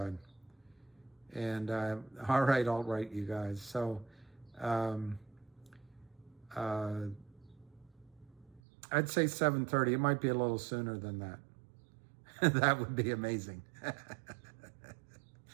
And all right, you guys. So I'd say 7:30. It might be a little sooner than that. That would be amazing.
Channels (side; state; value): left; drops out; at 8.6 s